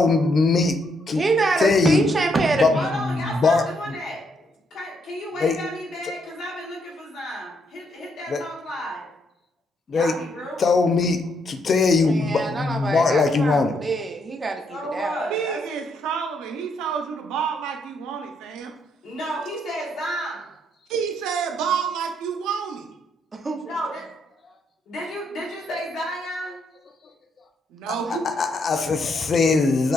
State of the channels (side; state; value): both; normal; correlation 0.74